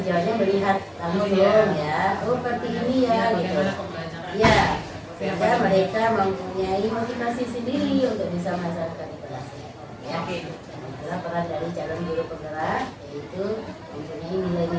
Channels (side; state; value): both; identical; correlation 1.00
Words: sejauhnya melihat langsung ya, oh seperti ini ya gitu. Ya, sehingga mereka mempunyai motivasi sendiri untuk bisa melaksanakan di kelasnya. Ya, itulah peran dari calon guru penggerak, yaitu mempunyai